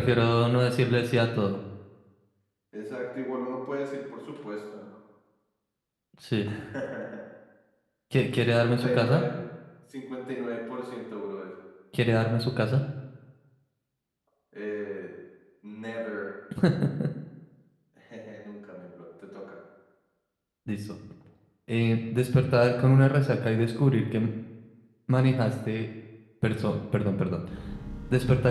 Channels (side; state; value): both; identical; correlation 1.00